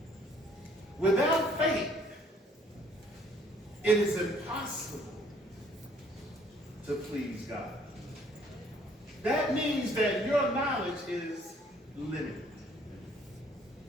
Without faith, it is impossible to please God. That means that your knowledge is limited.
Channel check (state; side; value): normal; both; correlation 0.61